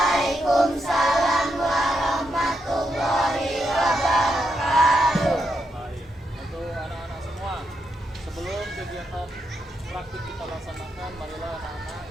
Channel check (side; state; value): both; normal; correlation 0.82